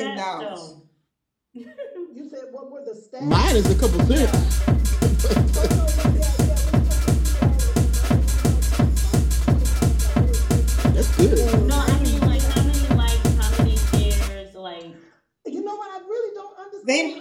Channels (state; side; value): identical; both; correlation 1.00